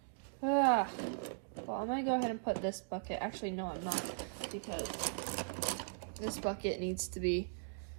Well, I'm gonna go ahead and put this bucket. Actually, no, I'm not, because this bucket needs to be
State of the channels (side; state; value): left; silent; digital silence